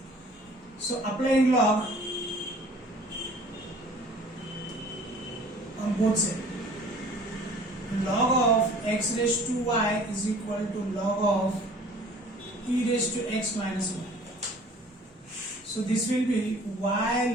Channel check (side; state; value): both; normal; correlation 0.50